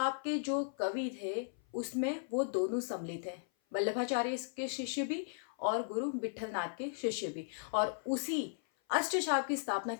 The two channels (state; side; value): silent; right; 54 dB below the other